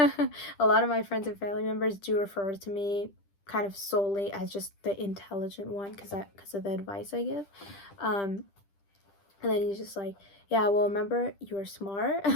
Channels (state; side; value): late; right; 10 ms